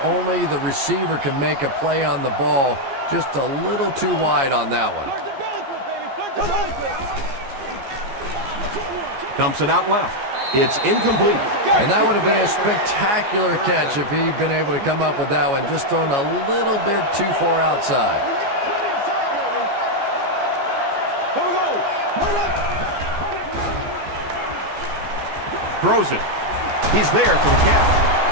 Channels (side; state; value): left; late; 15 ms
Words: only the receiver can make a play on the ball. Just a little too wide on that one. Dumps it out left. It's incomplete. And that would have been a spectacular catch if he'd been able to come up with that one. Just thrown a little bit too far outside. Throws it. He's there for the